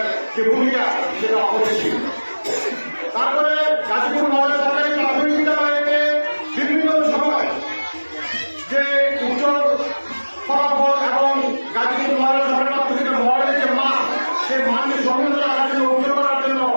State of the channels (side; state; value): both; inverted; correlation -1.00